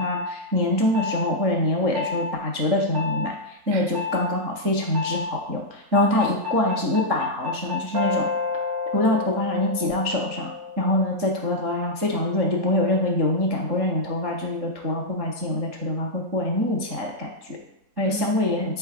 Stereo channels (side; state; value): left; late; 3.8 ms